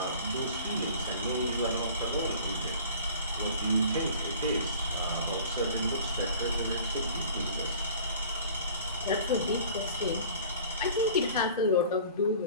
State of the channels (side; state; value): both; inverted; correlation -0.46